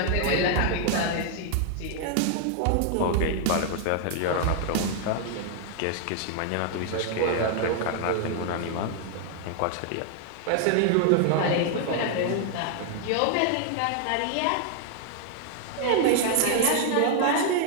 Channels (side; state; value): both; different; correlation 0.00